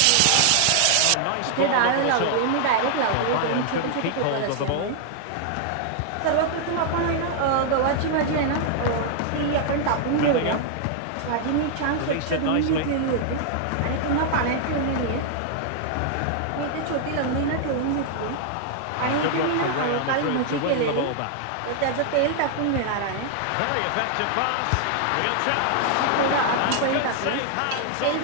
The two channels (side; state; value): both; different; correlation 0.00